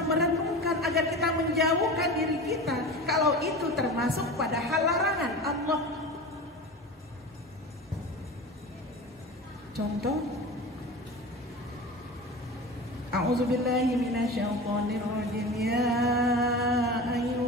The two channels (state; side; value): normal; both; correlation 0.32